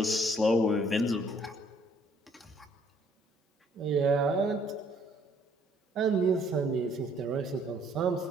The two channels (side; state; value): both; normal; correlation 0.64